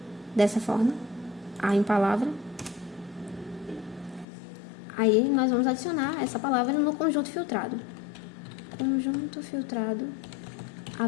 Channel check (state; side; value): drops out; right; at 4.2 s